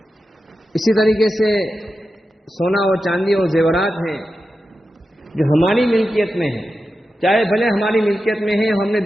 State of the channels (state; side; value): normal; both; correlation 0.91